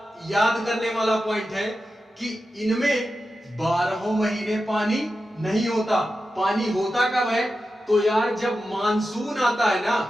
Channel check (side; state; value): both; normal; correlation 0.91